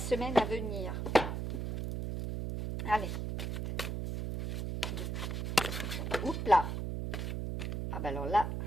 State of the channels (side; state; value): right; noise; hum, 3 dB below the sound